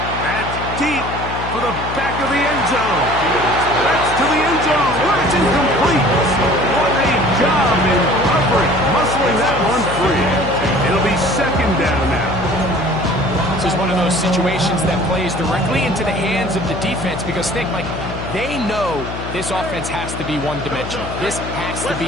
That's deep for the back of the end zone. That's to the end zone. It's incomplete. job in coverage, muscling that one free. It'll be second down now. This is one of those situations that plays directly into the hands of the defense because think, Mike, they know this offense has to be one-dimensional. This has to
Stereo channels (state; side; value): noise; left; hum, 8 dB below the sound